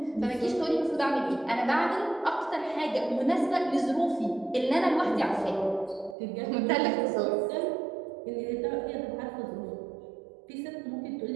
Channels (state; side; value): drops out; left; at 6.2 s